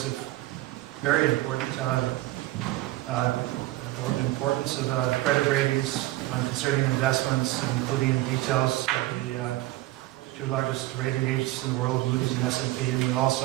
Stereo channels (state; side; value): quieter; left; 17.3 dB